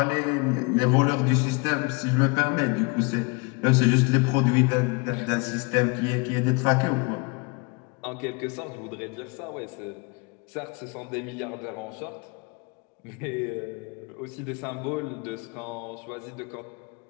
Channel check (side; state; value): right; quieter; 29.7 dB